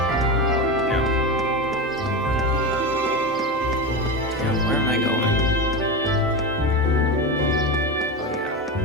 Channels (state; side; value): normal; both; correlation 0.20